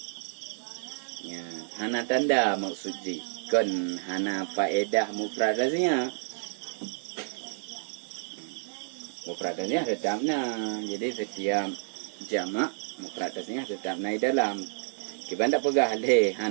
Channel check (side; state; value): left; silent; digital silence